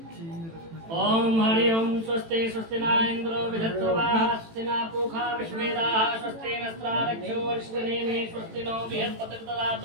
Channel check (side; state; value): left; late; 18 ms